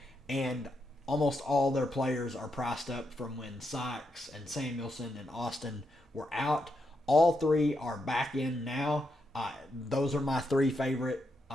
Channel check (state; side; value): normal; both; correlation 0.82